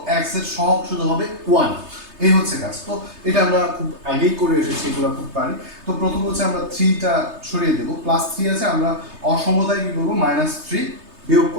x এর সহগ শুধু হবে 1, এই হচ্ছে কাজ। তো এটা আমরা খুব আগেই করে এসেছি, এগুলো খুব পারি। তো প্রথম হচ্ছে আমরা 3টা সরিয়ে দেব, প্লাস 3 আছে, আমরা অসমতায় কি করব -3 বিয়োগ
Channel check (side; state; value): left; late; 3.3 ms